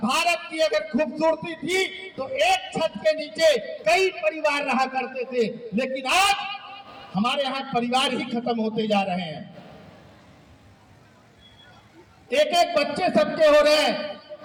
की अगर खूबसूरती थी तो एक छत के नीचे कई परिवार रहा करते थे, लेकिन आज हमारे यहाँ परिवार ही खत्म होते जा रहे हैं। एक एक बच्चे सबके हो रहे हैं।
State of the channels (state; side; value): identical; both; correlation 1.00